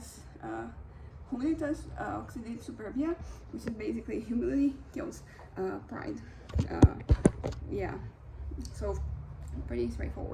Humilitas oxidates superbia, which is basically humility kills pride. Yeah, so pretty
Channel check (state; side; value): identical; both; correlation 1.00